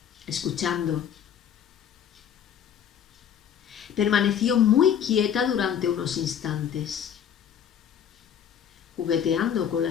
escuchando. Permaneció muy quieta durante unos instantes, jugueteando con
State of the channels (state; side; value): quieter; right; 8.8 dB